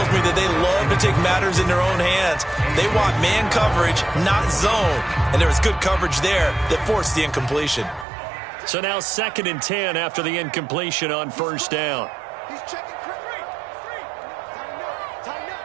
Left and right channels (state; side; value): drops out; left; at 8.1 s